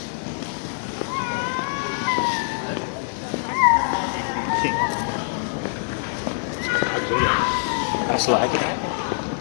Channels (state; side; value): silent; right; digital silence